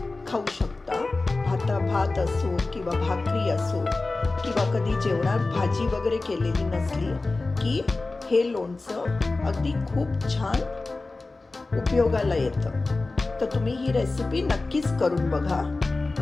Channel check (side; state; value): right; quieter; 3.4 dB